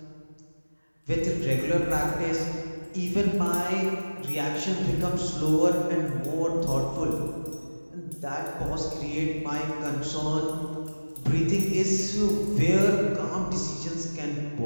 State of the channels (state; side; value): inverted; both; correlation -1.00